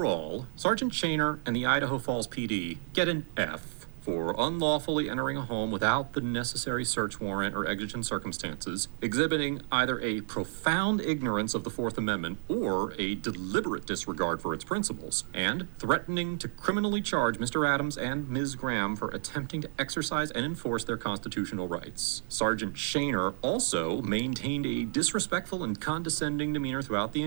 Sergeant Shaner and the Idaho Falls PD get an F for unlawfully entering a home without the necessary search warrant or exigent circumstances, exhibiting either a profound ignorance of the Fourth Amendment or a deliberate disregard for its principles, and threatening to criminally charge Mr. Adams and Ms. Graham for attempting to exercise and enforce their constitutional rights. Sergeant Shaner also maintained a disrespectful and condescending demeanor throughout the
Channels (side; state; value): left; silent; 57 dB below the other